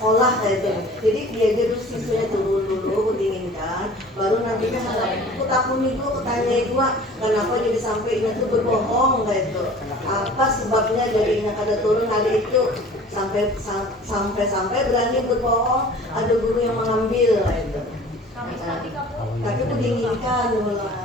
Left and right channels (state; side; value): normal; both; correlation 0.45